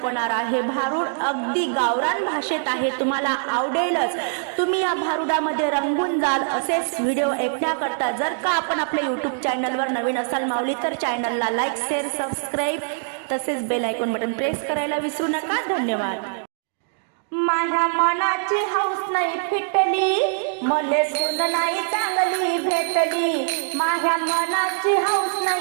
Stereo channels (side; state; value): left; silent; digital silence